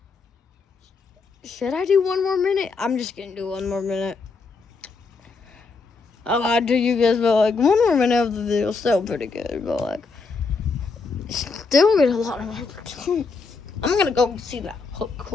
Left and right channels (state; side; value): quieter; right; 4.4 dB